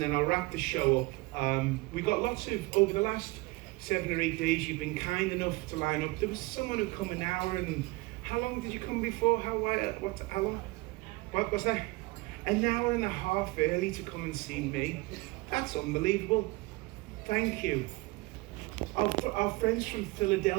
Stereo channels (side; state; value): left; quieter; 22.9 dB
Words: then I'll wrap the show up. We've got lots of, over the last 7 or 8 days, you've been kind enough to line up. There was someone who come an hour, and how long did you come before? How long? What was that? An hour and a half early to come and see me. That's unbelievable. Thank you. Our friends from